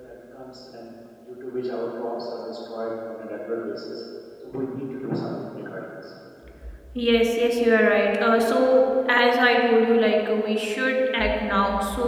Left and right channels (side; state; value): both; identical; correlation 1.00